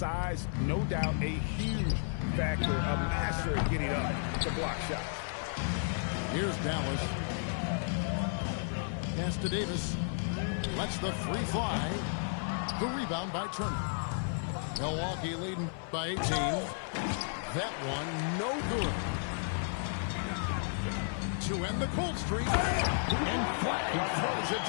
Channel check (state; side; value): silent; right; 56 dB below the other